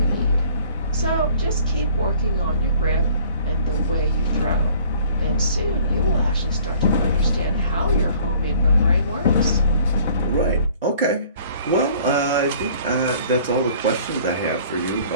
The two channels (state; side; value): inverted; both; correlation -0.54